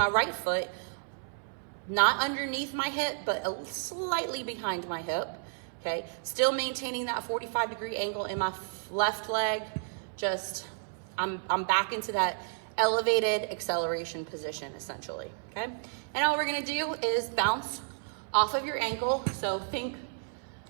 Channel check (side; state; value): left; silent; 57 dB below the other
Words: foot, not underneath my hip, but slightly behind my hip, okay? Still maintaining that 45-degree angle in my left leg. Just, I'm back into that elevated acceleration position, essentially, okay? And all we're gonna do is bounce off of your ankle. So think,